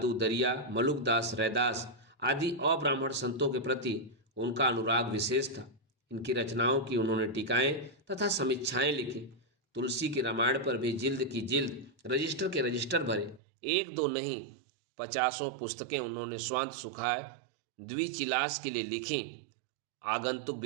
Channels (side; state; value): left; drops out; at 13.4 s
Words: दरिया, मलुकदास, रैदास आदि अब्राह्मण संतों के प्रति उनका अनुराग विशेष था। इनकी रचनाओं की उन्होंने टीकाएं तथा समीक्षाएं लिखी। तुलसी की रामायण पर भी जिल्द की जिल्द, रजिस्टर के रजिस्टर भरे। एक दो नहीं, 50 पुस्तकें उन्होंने स्वांत सुखाए द्विचिलास के लिए लिखी। आगंतुक